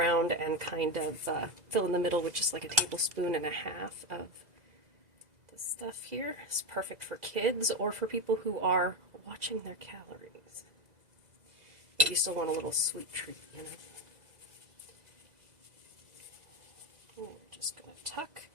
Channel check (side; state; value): left; late; 2.0 ms